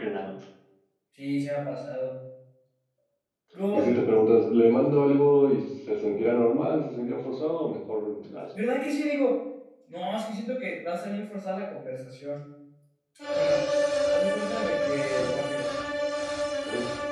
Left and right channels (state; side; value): identical; both; correlation 1.00